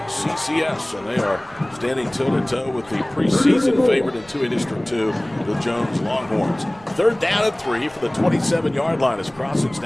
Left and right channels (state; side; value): noise; right; rumble, 25 dB below the sound